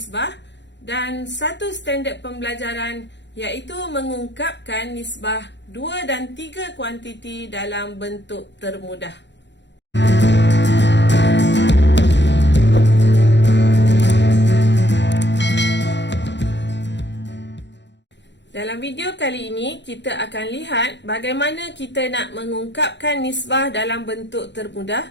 dan satu standard pembelajaran iaitu mengungkapkan nisbah 2 dan 3 kuantiti dalam bentuk termudah. Dalam video kali ini, kita akan lihat bagaimana kita nak mengungkapkan nisbah dalam bentuk termudah,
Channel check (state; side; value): late; right; 0.52 ms